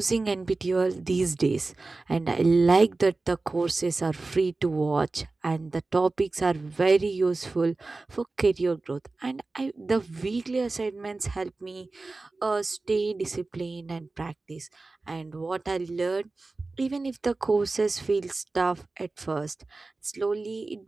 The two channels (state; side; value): quieter; left; 3.4 dB